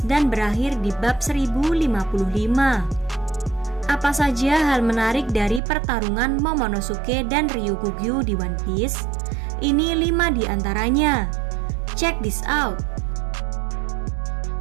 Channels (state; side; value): drops out; left; at 5.6 s